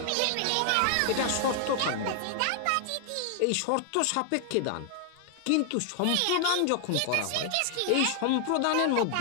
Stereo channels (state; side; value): different; both; correlation 0.00